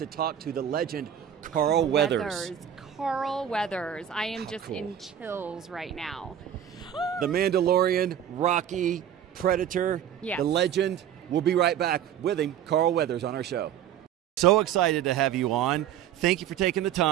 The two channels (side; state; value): left; quieter; 9.9 dB